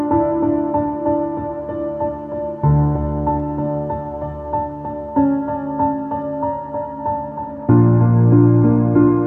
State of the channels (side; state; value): both; identical; correlation 1.00